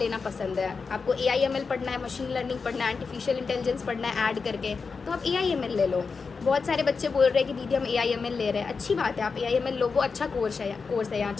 पसंद है। आपको AIML पढ़ना है, मशीन लर्निंग पढ़ना है, आर्टिफिशियल इंटेलिजेंस पढ़ना है ऐड करके, तो आप AIML ले लो। बहुत सारे बच्चे बोल रहे हैं कि दीदी हम AIML ले रहे हैं, अच्छी बात है, आप AIML लो, वो अच्छा कोर्स है यहाँ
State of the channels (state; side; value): quieter; right; 4.9 dB